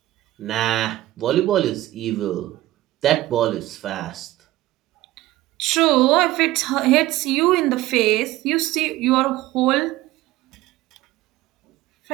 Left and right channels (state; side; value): quieter; left; 16.4 dB